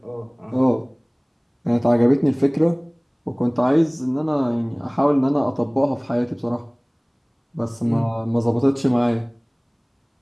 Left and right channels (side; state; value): both; identical; correlation 1.00